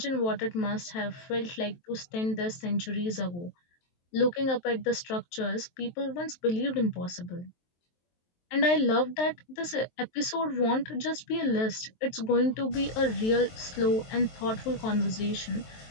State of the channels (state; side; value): late; right; 23 ms